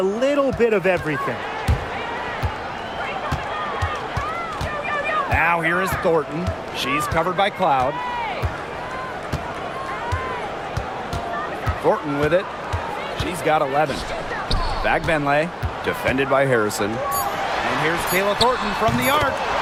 little bit of everything. Now here is Thornton. She's covered by Cloud. Thornton with it. She's got 11. Back Benlay, defended by Harrison. And here's Kayla Thornton from the arc.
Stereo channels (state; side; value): identical; both; correlation 1.00